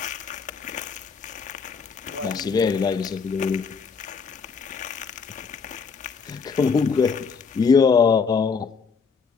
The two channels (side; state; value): right; quieter; 5.5 dB